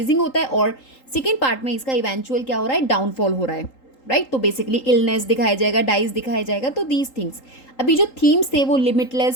होता है और सेकेंड पार्ट में इसका इवेंचुअल क्या हो रहा है, डाउनफॉल हो रहा है, राइट? तो बेसिकली इलनेस दिखाया जाएगा, डाइज दिखाया जाएगा। तो दीज थिंग्स अभी जो थीम्स थे वो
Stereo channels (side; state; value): right; late; 3.8 ms